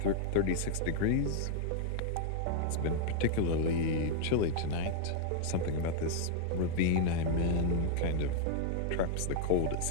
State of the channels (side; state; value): both; different; correlation -0.01